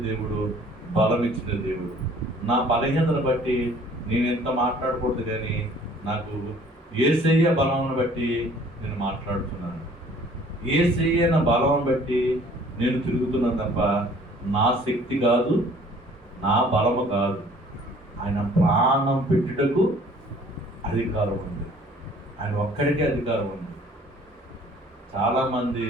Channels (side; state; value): both; normal; correlation 0.54